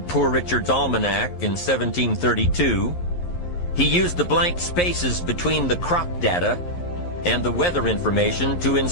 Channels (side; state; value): right; late; 11 ms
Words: Poor Richard's Almanac in 1732, he used the blank spaces between the crop data and the weather information to